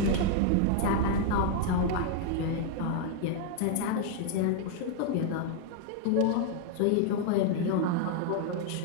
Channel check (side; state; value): both; different; correlation 0.00